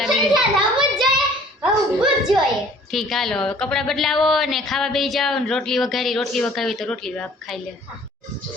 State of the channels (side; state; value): both; normal; correlation 0.53